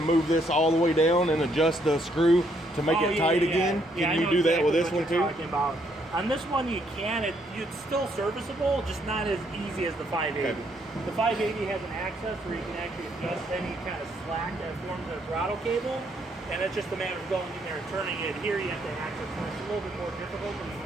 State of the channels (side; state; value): both; normal; correlation 0.71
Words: move this all the way down and adjust the screw to make it tight again? Yeah, Can you do that with this one too? About. On this one you can. It's still serviceable, just not as easy as the 580. Okay. The 580 has an access where you can actually adjust any kind of slack that forms a throttle cable, and it's just a matter of going in there and turning it. Here you have to access it. It's a little bit more difficult, but you can